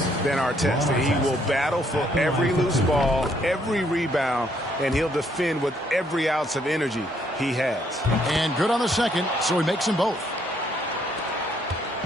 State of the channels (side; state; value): both; normal; correlation 0.69